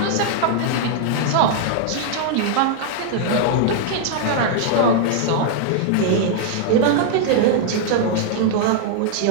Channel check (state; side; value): different; both; correlation -0.01